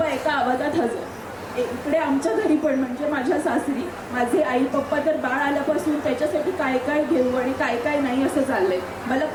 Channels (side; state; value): both; identical; correlation 1.00